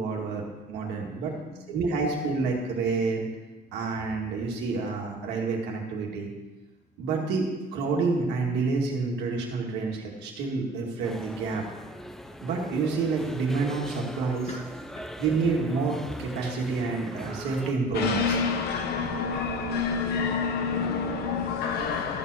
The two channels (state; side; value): normal; both; correlation 0.39